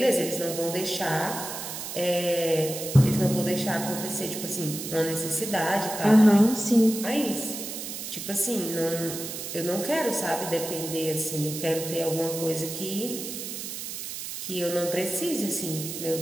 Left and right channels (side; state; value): right; noise; hiss, 7 dB below the sound